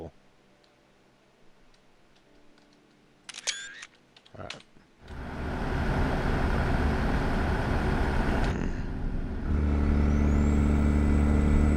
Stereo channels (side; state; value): both; identical; correlation 1.00